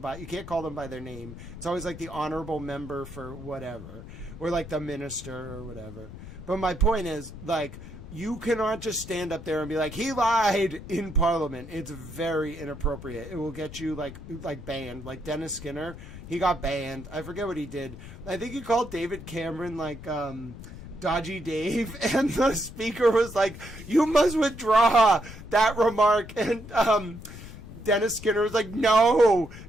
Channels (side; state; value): left; noise; rumble, 14 dB below the sound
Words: you can't call them by their name. It's always like the honorable member for whatever or like the minister or whatever. But my point is like, you cannot just stand up there and be like, he lied in Parliament. It's very inappropriate. It will get you like banned. Like Dennis Skinner, he got banned. I forget what he did. I think he called David Cameron like Dodgy Dave, and the speaker was like, you must withdraw that remark. And Dennis Skinner was like, no.